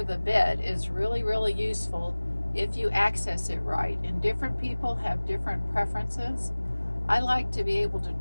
the bed is really, really useful if you access it right. And different people have different preferences. I like to be able to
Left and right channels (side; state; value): both; inverted; correlation -1.00